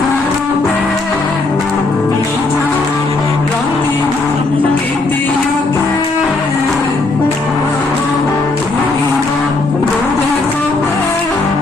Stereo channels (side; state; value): right; quieter; 3.3 dB